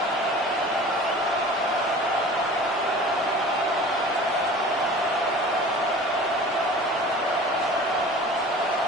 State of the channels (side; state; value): both; normal; correlation 0.42